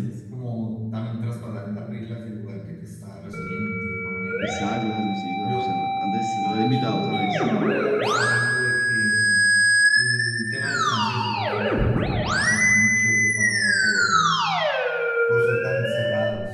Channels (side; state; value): both; identical; correlation 1.00